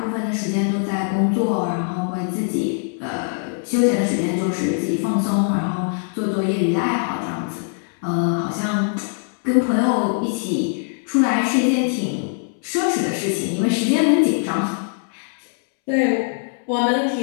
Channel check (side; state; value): right; silent; 64 dB below the other